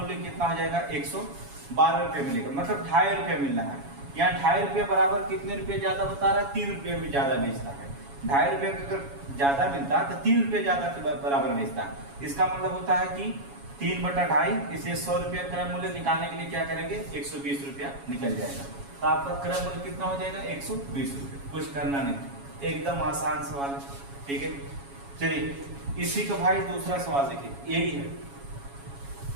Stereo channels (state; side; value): late; left; 7.2 ms